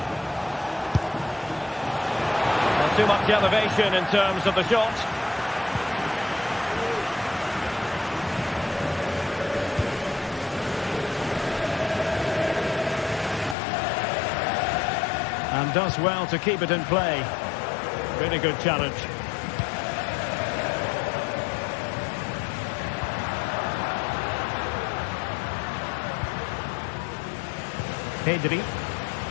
Not too much elevation in terms of the shot. And does well to keep it in play. Really good challenge. Pedri.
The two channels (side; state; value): right; drops out; at 13.6 s